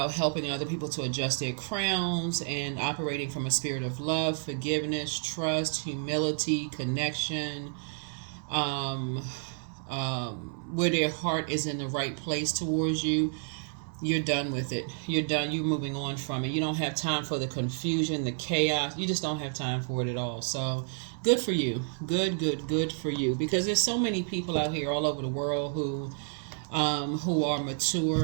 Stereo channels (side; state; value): left; silent; 58 dB below the other